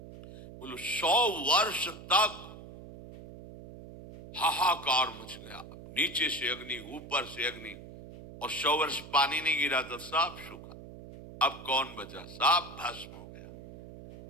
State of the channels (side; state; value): right; noise; hum, 15 dB below the sound